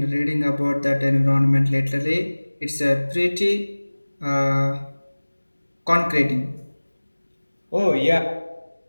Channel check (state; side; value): inverted; both; correlation -1.00